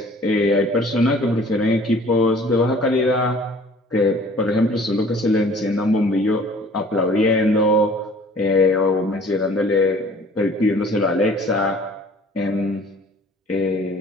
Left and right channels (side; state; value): both; normal; correlation 0.51